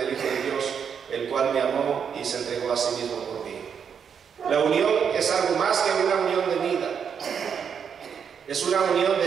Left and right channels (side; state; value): left; quieter; 7.2 dB